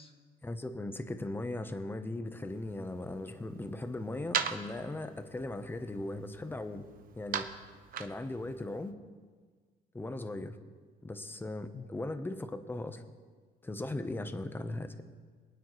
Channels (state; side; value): normal; both; correlation 0.67